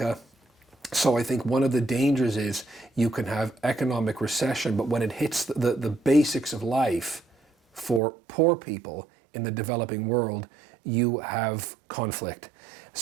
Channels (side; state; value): left; drops out; at 8.0 s